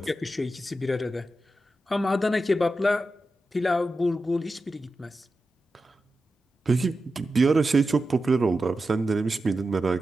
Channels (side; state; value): both; normal; correlation 0.91